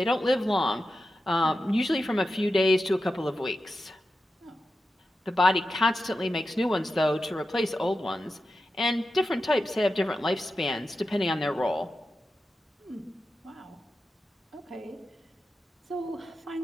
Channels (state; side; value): normal; both; correlation 0.91